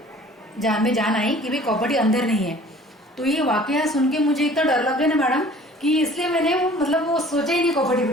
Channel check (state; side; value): normal; both; correlation 0.49